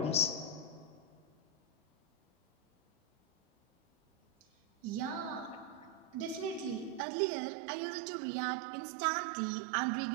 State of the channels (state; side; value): drops out; left; at 7.1 s